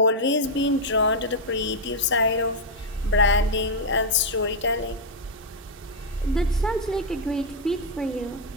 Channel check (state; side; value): normal; both; correlation -0.01